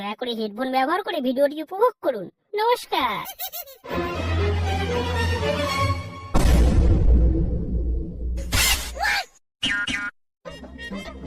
করে হেডফোন ব্যবহার করে ভিডিওটি উপভোগ করুন। নমস্কার।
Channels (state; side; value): identical; both; correlation 1.00